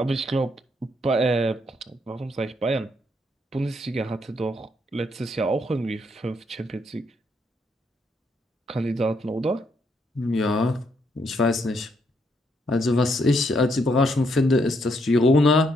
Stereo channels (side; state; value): both; normal; correlation 0.74